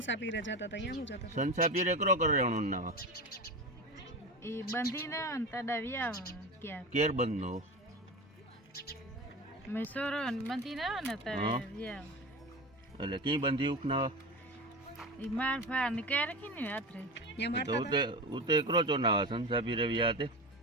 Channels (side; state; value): both; normal; correlation 0.26